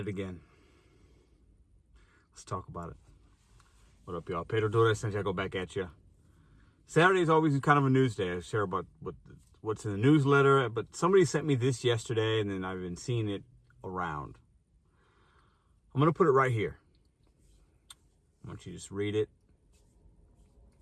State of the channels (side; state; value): both; identical; correlation 1.00